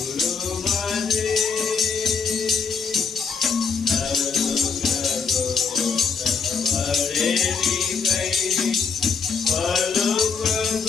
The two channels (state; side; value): quieter; right; 5.5 dB